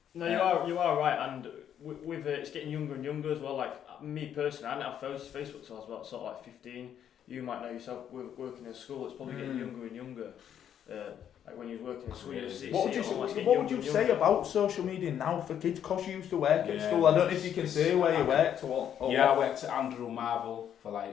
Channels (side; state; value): right; quieter; 9.5 dB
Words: No, you are right, and with it's getting younger and younger as well. Like me personally, I didn't have Facebook till I was about sort of like 15. You might know yourself working in school. It's probably getting younger and younger. Like when you're working in school, what would you say about social media now for kids? Because you used to work at school. I don't know if you can say where you worked or what. I worked at Andrew Marvel for